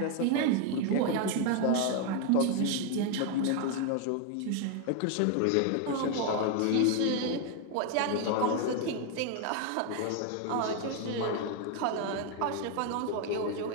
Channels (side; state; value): both; different; correlation 0.01